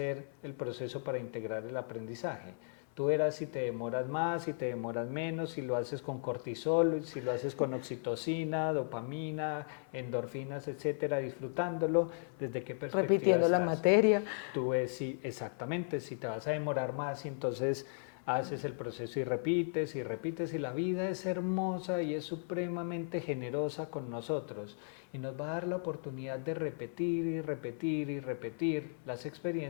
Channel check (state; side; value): silent; right; 54 dB below the other